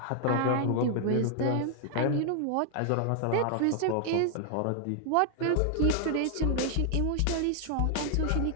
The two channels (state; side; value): different; both; correlation 0.00